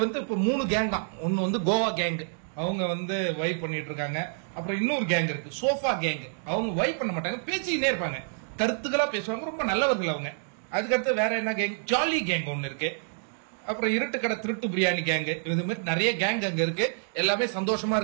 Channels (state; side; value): silent; left; digital silence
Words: வந்து இப்ப 3 கேங் தான். ஒன்னு வந்து கோவா கேங், அவங்க வந்து வைப் பண்ணிட்டு இருக்காங்க. அப்புறம் இன்னொரு கேங் இருக்கு, சோஃபா கேங். அவங்க வைப் பண்ண மாட்டாங்க, பேசிக்கிட்டே இருப்பாங்க, கருத்துக்களா பேசுவாங்க, ரொம்ப நல்லவர்கள் அவங்க. அதுக்கடுத்து வேற என்ன கேங், ஜாலி கேங் ஒன்னு இருக்கு. அப்புறம் இருட்டு கடை திருட்டு பிரியாணி கேங். இது மாதிரி நிறைய கேங் அங்க இருக்கு. எல்லாமே சந்தோஷமா